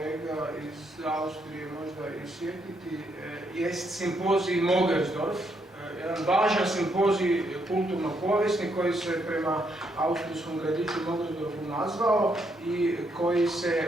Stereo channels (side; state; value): both; normal; correlation 0.75